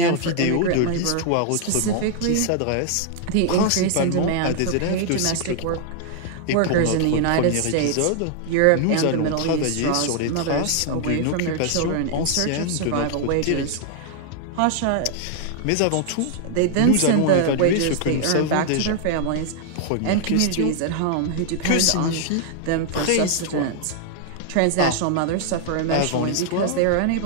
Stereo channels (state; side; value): different; both; correlation 0.00